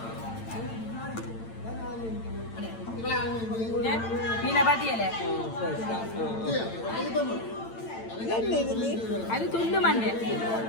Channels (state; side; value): late; right; 8.9 ms